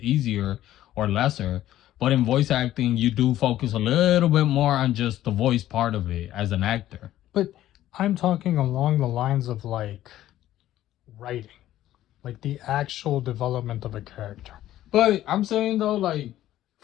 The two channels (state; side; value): quieter; right; 13.4 dB